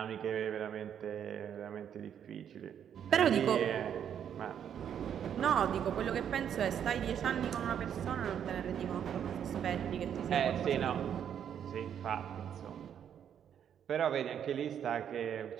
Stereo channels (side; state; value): left; quieter; 8.9 dB